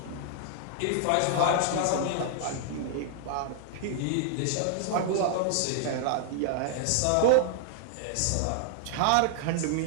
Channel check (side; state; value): both; different; correlation -0.01